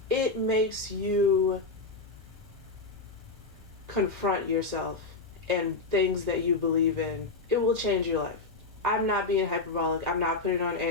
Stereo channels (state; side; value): quieter; right; 3.6 dB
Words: It makes you confront yourself and things that you believe in. It will change your life. I'm not being hyperbolic. I'm not putting on